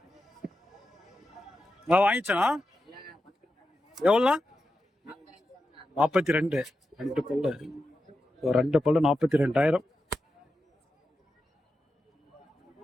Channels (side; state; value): both; normal; correlation 0.90